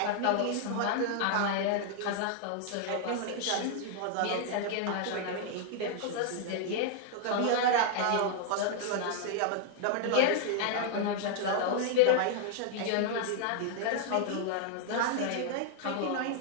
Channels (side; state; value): both; different; correlation 0.00